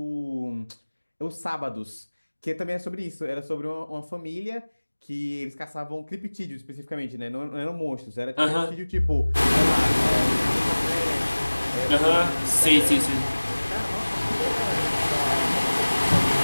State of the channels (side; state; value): both; inverted; correlation -1.00